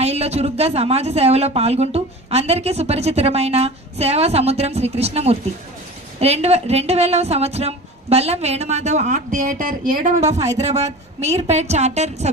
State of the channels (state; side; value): normal; both; correlation 0.36